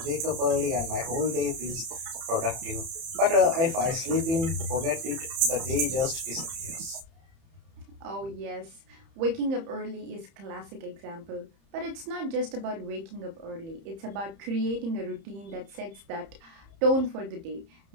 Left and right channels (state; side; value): late; left; 30 ms